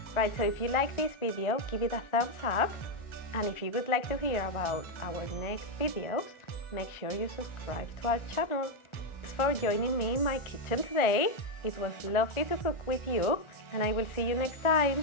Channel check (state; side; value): late; right; 1.4 ms